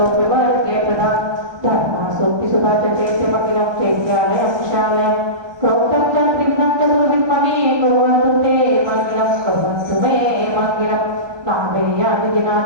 प्रदा धर्मासूक्तिसुधा च चैत्यमखिलं चैत्यालयं शालयं प्रोक्तं च त्रिविधं चतुर्विद्ममे कुर्वन्तु ते मङ्गिलं कुर्वन्तु मे मङ्गिलं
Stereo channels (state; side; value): late; left; 1.2 ms